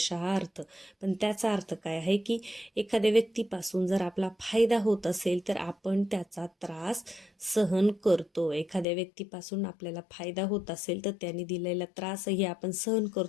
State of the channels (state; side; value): drops out; right; at 8.8 s